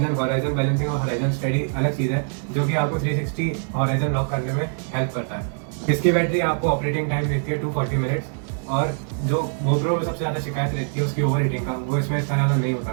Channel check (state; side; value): silent; left; 58 dB below the other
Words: then horizon balancing और हॉराइजन स्टेडी अलग चीज़ है, जो कि आपको 360 हॉराइजन लॉक करने में हेल्प करता है। इसकी बैटरी आपको ऑपरेटिंग टाइम देती है 240 मिनट्स और जो GoPro में सबसे ज़्यादा शिकायत रहती है उसकी ओवर हीटिंग का, वो इसमें इतना ज़्यादा नहीं